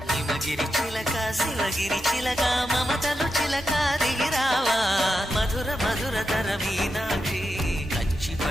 హిమగిరి చిలక శివగిరి చిలక మమతలు చిలక దిగిరావా మధుర మధుర తర మీనాక్షి కంచి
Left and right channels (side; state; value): both; normal; correlation 0.87